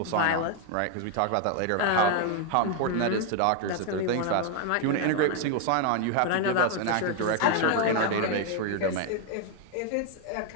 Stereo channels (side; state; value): both; different; correlation 0.01